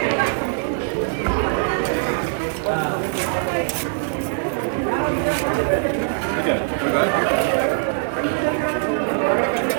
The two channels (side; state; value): left; silent; 61 dB below the other